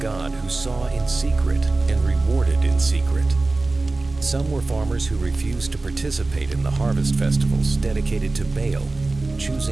who saw in secret and rewarded in secret. Some were farmers who refused to participate in the harvest festivals dedicated to Baal,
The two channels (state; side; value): quieter; left; 3.3 dB